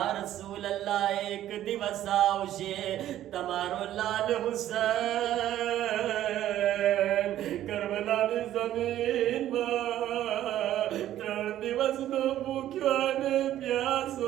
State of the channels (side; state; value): left; quieter; 12.5 dB